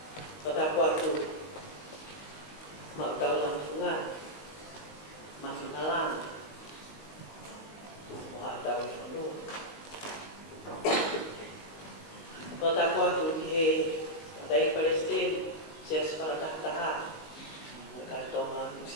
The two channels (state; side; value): late; right; 19 ms